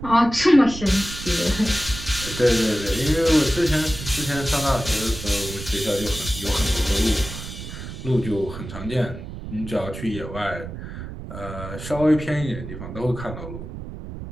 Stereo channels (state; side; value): noise; right; rumble, 10 dB below the sound